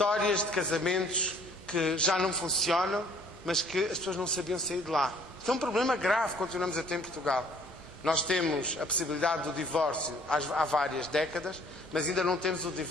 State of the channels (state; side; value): normal; both; correlation 0.58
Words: de casamentos que já não funcionam, mas que as pessoas não sabiam sair de lá. Isso é um problema grave que continuamos a ter em Portugal. Nós temos a possibilidade do divórcio há várias décadas, mas ainda não temos o